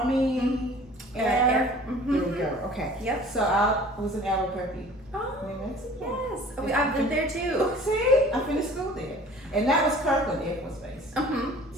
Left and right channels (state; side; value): normal; both; correlation 0.47